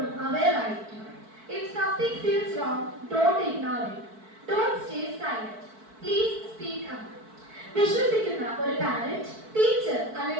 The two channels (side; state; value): left; late; 4.6 ms